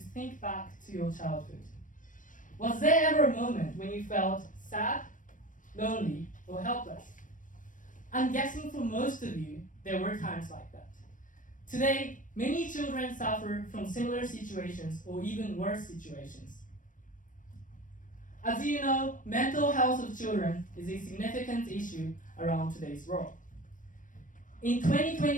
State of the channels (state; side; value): late; right; 0.38 ms